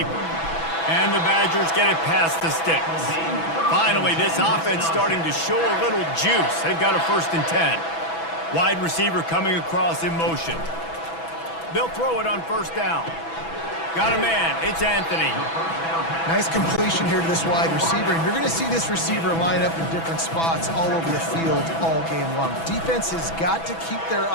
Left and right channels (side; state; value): right; late; 6.1 ms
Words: And the Badgers get it past the sticks. Finally, this offense starting to show a little juice. They've got a 1st and 10. Wide receiver coming across in motion. They'll throw it on first down. Got a man. It's Anthony. Nice completion here to this wide receiver, and you're going to see this receiver line up in different spots all over the field all game long. Defense has got to keep their